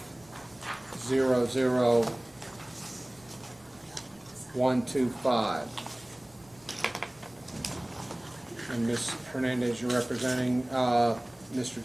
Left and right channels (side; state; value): right; noise; rumble, 30 dB below the sound